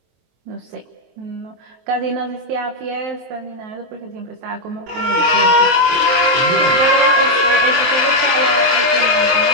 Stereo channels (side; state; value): left; late; 23 ms